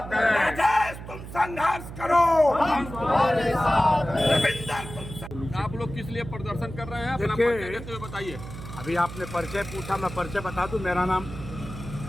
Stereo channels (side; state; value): right; noise; hum, 11 dB below the sound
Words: हैं। राजेश तुम संघर्ष करो, हम तुम्हारे साथ हैं। रविंदर तुम। आप लोग किस लिए प्रदर्शन कर रहे हैं? अपना परिचय देते हुए बताइए। अभी आपने परिचय पूछा, मैं परिचय बता दूं। मेरा नाम